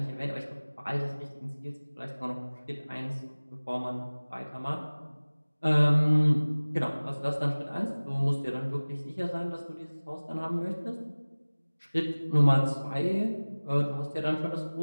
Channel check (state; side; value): inverted; both; correlation -1.00